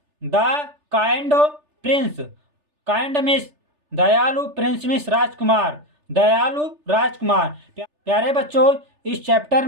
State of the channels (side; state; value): left; late; 3.3 ms